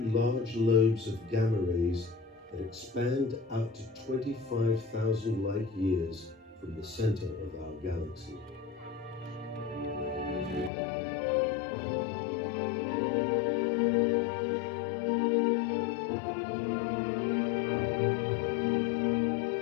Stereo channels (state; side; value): drops out; right; at 10.7 s